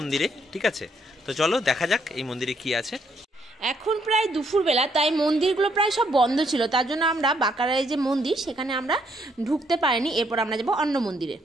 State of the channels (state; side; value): normal; both; correlation 0.72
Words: ঠিক আছে? তো চলো দেখা যাক এই মন্দিরে কি আছে। এখন প্রায় দুপুরবেলা, তাই মন্দিরগুলো প্রায় সব বন্ধ ছিল, তার জন্য আমরা বাঁকারায় যে মন্দির সেখানে আমরা ঢুকতে পারিনি। এরপর আমরা যাবো অন্য মন্দিরে।